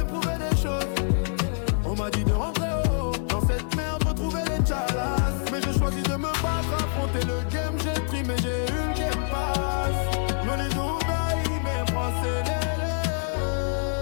prouver des choses. On m'a dit de rentrer haut, dans cette merde retrouver les chalas. Mais j'ai choisi de me battre, affronter le game. J'ai pris mais j'ai eu le game pass. Mené d'Oubaï, mes français les.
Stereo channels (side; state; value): right; silent; digital silence